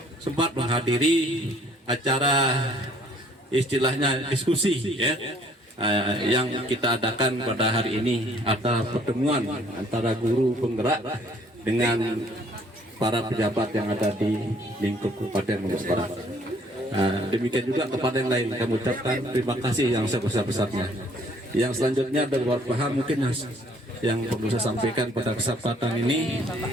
sempat menghadiri acara istilahnya diskusi ya, yang kita adakan pada hari ini, atau pertemuan antara guru penggerak dengan para pejabat yang ada di lingkup Kabupaten Lombok Barat. Demikian juga kepada yang lain kami ucapkan terima kasih yang sebesar-besarnya. Yang selanjutnya ada beberapa hal mungkin yang perlu saya sampaikan pada kesempatan ini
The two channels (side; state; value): both; normal; correlation 0.60